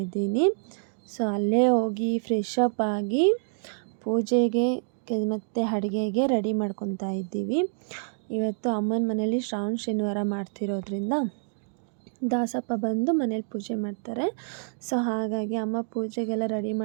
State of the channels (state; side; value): silent; left; 59 dB below the other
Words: ಇದ್ದೀನಿ. ಸೊ ಅಲ್ಲೇ ಹೋಗಿ ಫ್ರೆಶ್ ಅಪ್ ಆಗಿ ಪೂಜೆಗೆ ಮತ್ತು ಅಡುಗೆಗೆ ರೆಡಿ ಮಾಡ್ಕೊತಾ ಇದ್ದೀವಿ. ಇವತ್ತು ಅಮ್ಮನ ಮನೇಲಿ ಶ್ರಾವಣ ಶನಿವಾರ ಮಾಡ್ತಿರೋದ್ರಿಂದ ದಾಸಪ್ಪ ಬಂದು ಮನೇಲಿ ಪೂಜೆ ಮಾಡ್ತಾರೆ. ಸೊ ಹಾಗಾಗಿ ಅಮ್ಮ ಪೂಜೆಗೆಲ್ಲ ರೆಡಿ